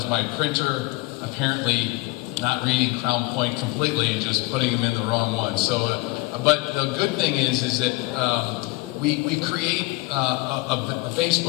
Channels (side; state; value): right; quieter; 23.1 dB